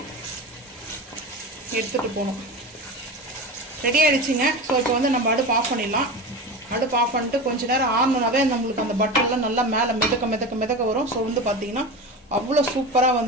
எடுத்துகிட்டு போனோம். ரெடி ஆகிடுச்சிங்க. ஸோ இப்போ வந்து நம்ம அடுப்பு ஆஃப் பண்ணிடலாம். அடுப்பு ஆஃப் பண்ணிட்டு கொஞ்சம் நேரம் ஆனோனாவே நம்மளுக்கு அந்த பட்டர்லாம் நல்லா மேலே மிதக்க வரும். ஸோ வந்து பார்த்திங்கன்னா அவ்வளோ சூப்பராக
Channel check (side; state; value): both; normal; correlation 0.27